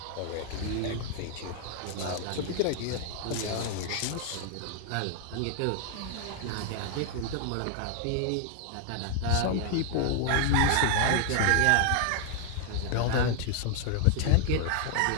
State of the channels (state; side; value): different; both; correlation 0.00